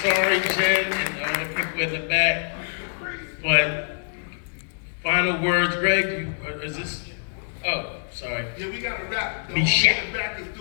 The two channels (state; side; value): silent; right; digital silence